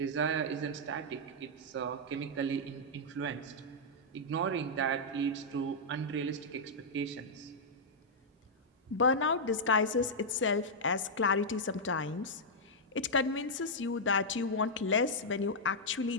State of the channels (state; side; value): normal; both; correlation -0.06